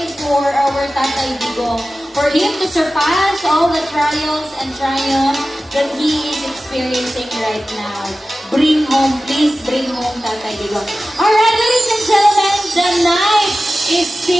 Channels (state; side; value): normal; both; correlation 0.95